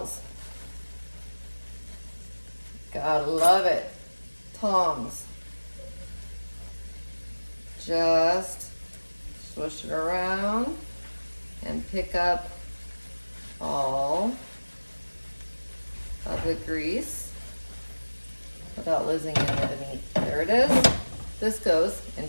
Gotta love it. Tongs. Just swish it around and pick up all of the grease without losing any of the meat. There it is. This goes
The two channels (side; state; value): both; inverted; correlation -1.00